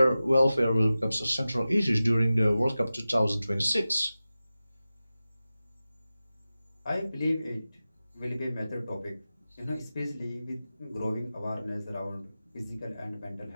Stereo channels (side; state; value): both; inverted; correlation -0.95